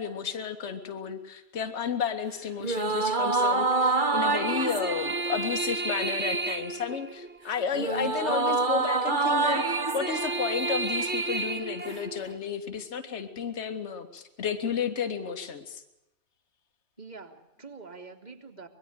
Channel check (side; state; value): right; late; 2.3 ms